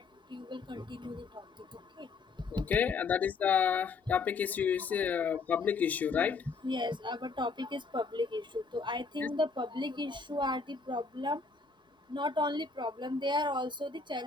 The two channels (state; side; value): quieter; right; 4.5 dB